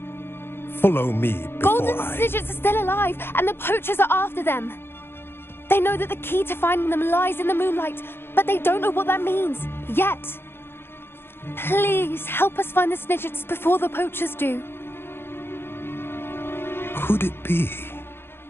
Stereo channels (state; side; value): late; right; 0.11 ms